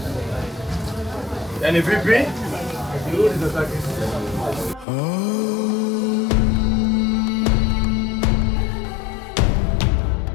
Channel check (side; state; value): right; drops out; at 4.9 s